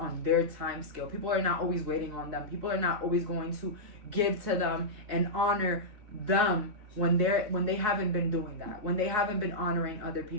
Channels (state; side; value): late; left; 4.7 ms